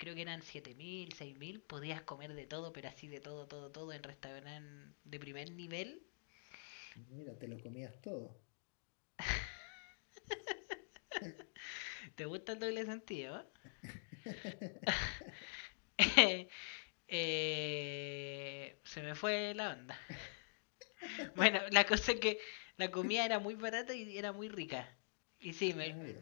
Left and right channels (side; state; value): right; silent; digital silence